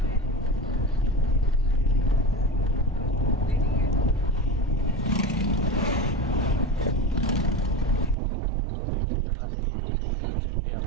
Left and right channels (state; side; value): drops out; left; at 8.2 s